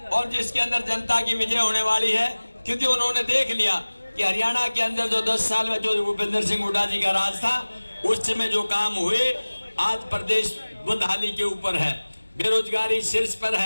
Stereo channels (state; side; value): inverted; both; correlation -1.00